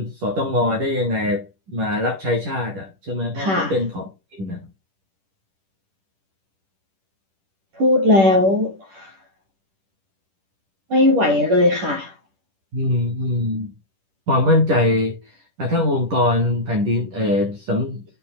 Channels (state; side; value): late; left; 10 ms